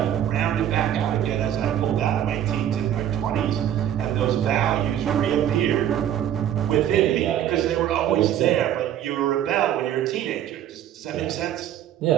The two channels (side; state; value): left; quieter; 10.8 dB